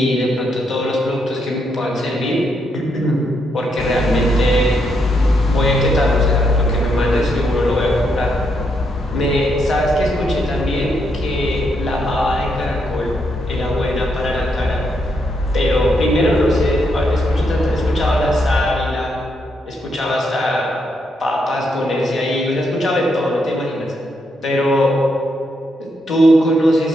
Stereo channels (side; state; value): both; normal; correlation 0.78